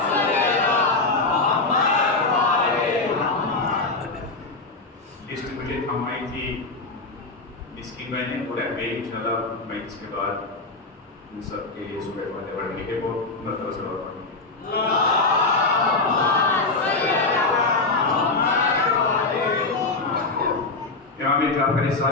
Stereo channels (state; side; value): quieter; right; 3.6 dB